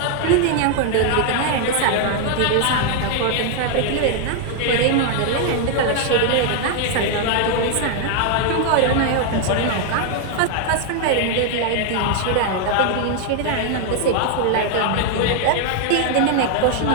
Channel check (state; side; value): different; both; correlation 0.00